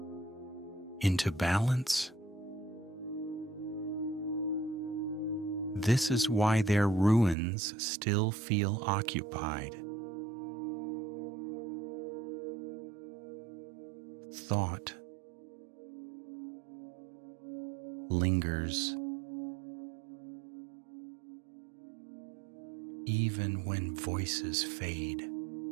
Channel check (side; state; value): left; drops out; at 7.4 s